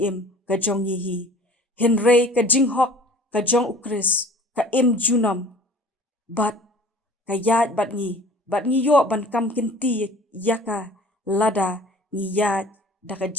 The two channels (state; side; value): normal; both; correlation 0.48